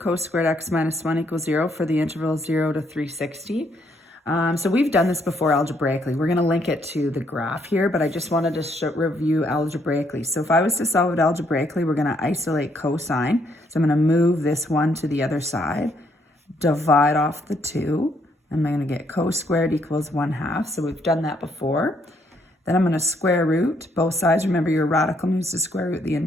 squared x minus 1 equals 0 for the interval 0 to 360. So we've done this before algebraically. We're going to link it to the graph here, but I just wanted to review algebraically. So if I was to solve it algebraically, we're going to isolate cosine. So I'm going to move this one to the other side, divide off the 2. I'm going to get cos squared equals 1/2. So we've done that before. Then I'm going to square root both sides. Remember, your radical moves to square root the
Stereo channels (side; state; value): both; normal; correlation 0.71